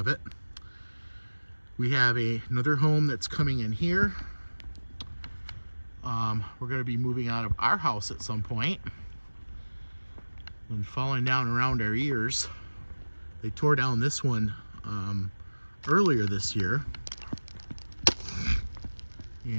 it. We have another home that's coming in here. We're going to be moving out of our house at some point and falling down around our ears. They tore down this one earlier this year.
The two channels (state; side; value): inverted; both; correlation -1.00